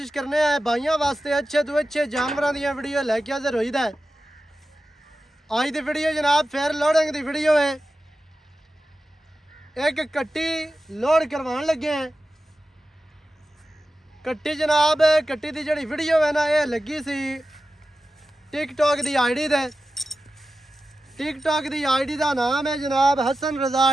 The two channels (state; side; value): normal; both; correlation 0.93